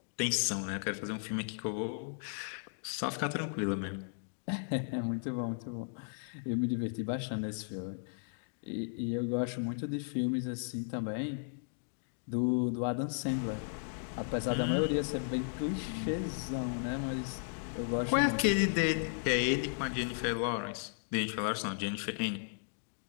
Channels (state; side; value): silent; right; digital silence